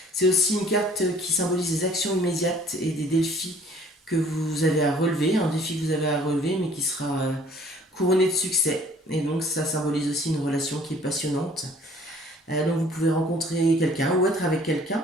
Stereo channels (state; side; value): normal; both; correlation 0.55